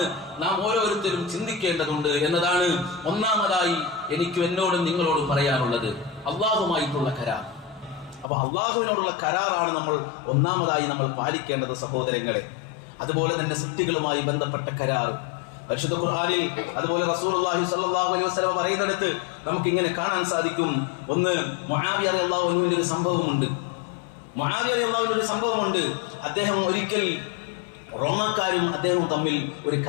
നാം ഓരോരുത്തരും ചിന്തിക്കേണ്ടതുണ്ട് എന്നതാണ് ഒന്നാമതായി എനിക്കും എന്നോടും നിങ്ങളോടും പറയാനുള്ളത്. അള്ളാഹുമായിട്ടുള്ള കരാർ. അപ്പൊ അള്ളാഹുവിനോടുള്ള കരാറാണ് നമ്മൾ ഒന്നാമതായി നമ്മൾ പാലിക്കേണ്ടത് സഹോദരങ്ങളെ. അതുപോലെ തന്നെ സൃഷ്ടികളുമായി ബന്ധപ്പെട്ട കരാർ, പരിശുദ്ധ ഖുർആനിൽ അതുപോലെ റസൂലുള്ളാഹി സ്വല്ലല്ലാഹു അലൈഹി വസല്ലം പറയുന്നിടത്ത് നമുക്ക് ഇങ്ങനെ കാണാൻ സാധിക്കും. ഒന്ന്, മുആവിയ റളിയല്ലാഹു അൻഹുവിന്റെ ഒരു സംഭവമുണ്ട്. അദ്ദേഹം ഒരിക്കൽ റോമാക്കാരും അദ്ദേഹവും തമ്മിൽ ഒരു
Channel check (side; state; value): right; drops out; at 8.2 s